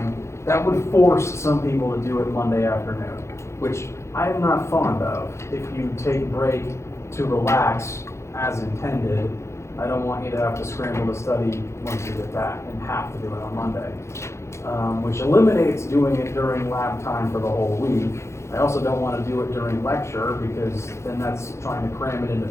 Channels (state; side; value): late; right; 0.13 ms